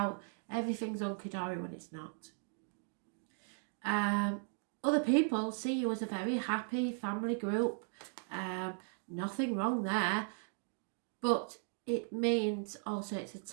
everything's hunky-dory when it's not. Other people see you as a very happy family group. Nothing wrong there, but it means also it's a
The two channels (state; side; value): silent; left; 53 dB below the other